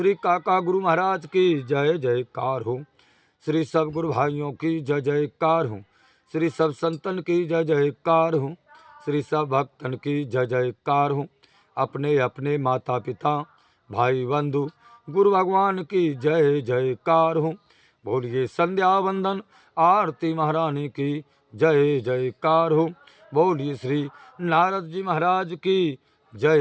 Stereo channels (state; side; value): identical; both; correlation 1.00